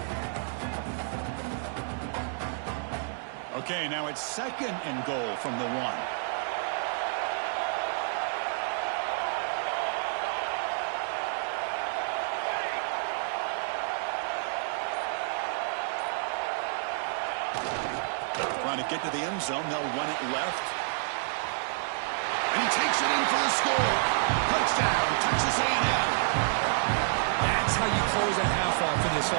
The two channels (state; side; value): silent; left; 58 dB below the other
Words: Okay, now it's second and goal from the 1. Trying to get to the end zone. They'll run it left. And he takes it in for the score. Touchdown, Texas A&M. That's how you close a half off for this